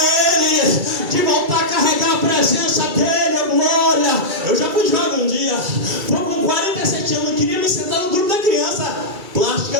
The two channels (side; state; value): left; late; 2.3 ms